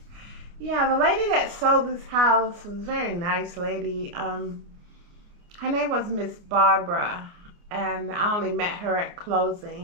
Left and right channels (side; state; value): left; late; 29 ms